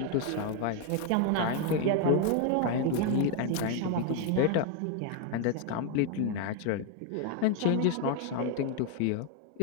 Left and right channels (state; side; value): different; both; correlation 0.01